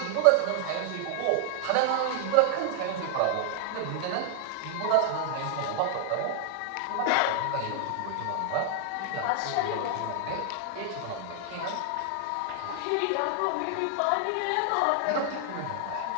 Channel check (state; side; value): different; both; correlation 0.00